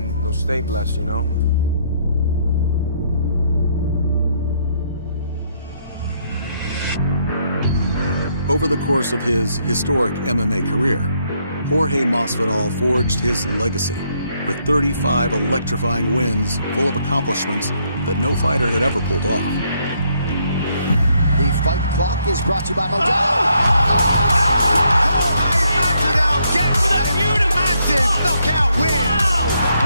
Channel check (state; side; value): inverted; both; correlation -0.72